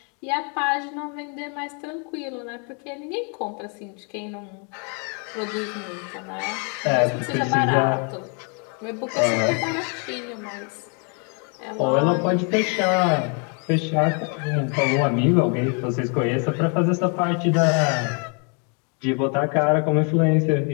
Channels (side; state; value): right; quieter; 37.6 dB